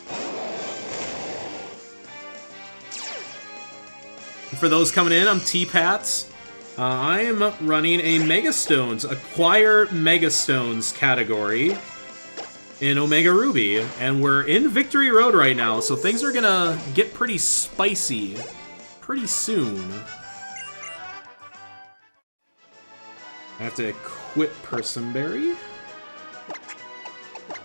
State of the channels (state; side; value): inverted; both; correlation -1.00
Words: For those coming in, I'm T-Pats. I am running a Megastones, Acquire Megastones category in Omega Ruby, and we're in Victory Road right now, so things are gonna get pretty spicy pretty soon. I have to equip Personberry.